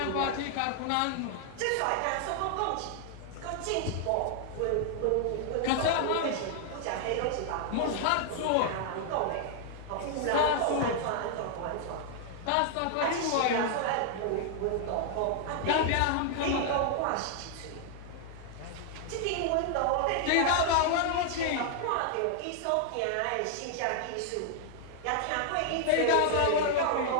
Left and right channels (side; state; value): both; different; correlation 0.00